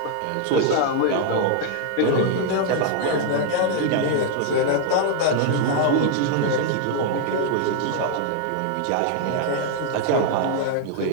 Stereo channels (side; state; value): both; different; correlation 0.00